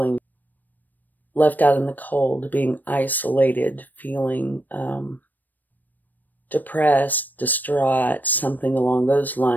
left out in the cold, being isolated, feeling depressed, distraught, something along those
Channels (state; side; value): late; right; 0.088 ms